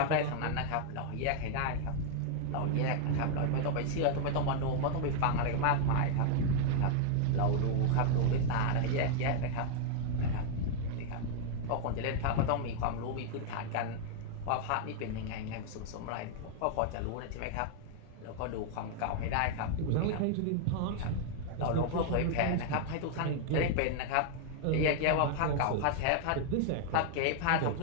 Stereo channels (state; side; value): different; both; correlation 0.00